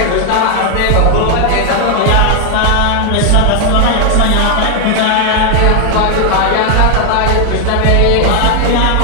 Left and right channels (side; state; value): both; different; correlation 0.00